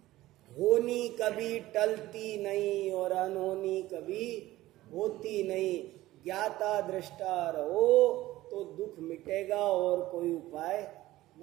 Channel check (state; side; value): quieter; left; 16.4 dB